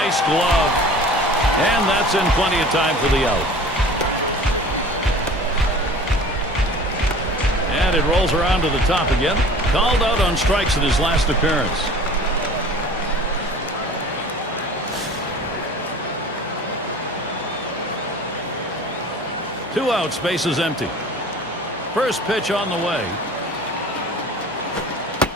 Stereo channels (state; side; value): normal; both; correlation 0.43